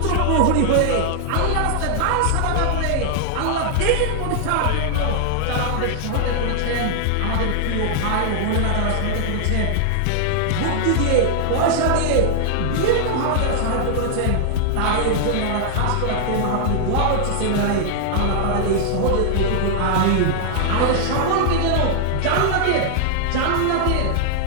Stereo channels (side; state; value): both; different; correlation -0.01